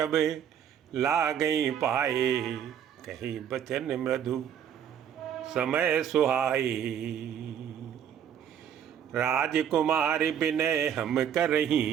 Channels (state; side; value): quieter; left; 9.0 dB